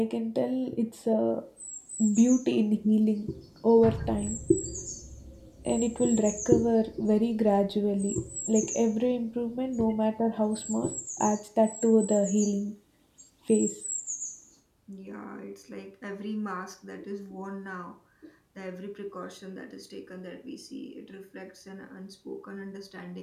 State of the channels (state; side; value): identical; both; correlation 1.00